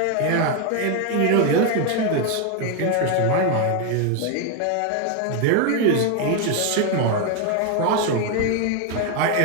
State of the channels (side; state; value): both; different; correlation 0.01